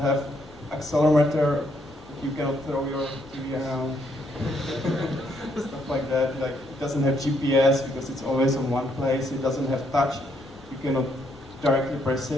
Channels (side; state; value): both; normal; correlation 0.73